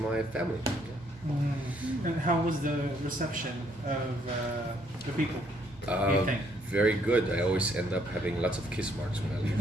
family. Yeah. And how was the reception of the people? What do you think? Very good. I always end up having lots of kiss marks when I leave.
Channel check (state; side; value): normal; both; correlation 0.68